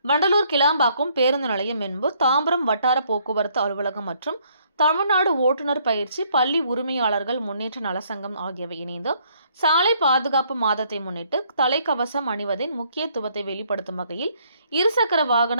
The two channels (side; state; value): both; inverted; correlation -0.67